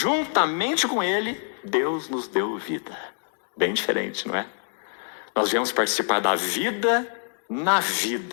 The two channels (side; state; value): right; silent; digital silence